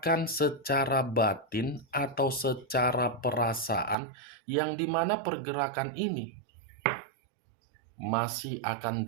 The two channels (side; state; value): left; drops out; at 4.0 s